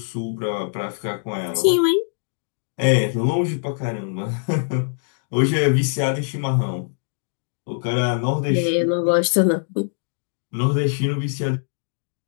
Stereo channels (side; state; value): right; silent; digital silence